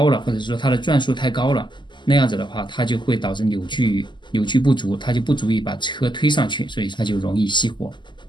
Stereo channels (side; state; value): right; late; 0.22 ms